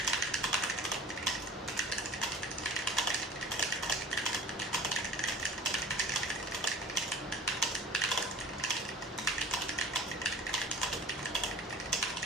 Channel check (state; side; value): normal; both; correlation 0.42